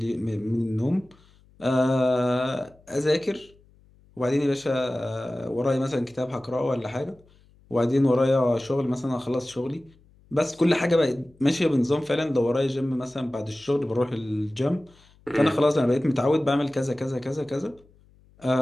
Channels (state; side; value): noise; left; hum, 29 dB below the sound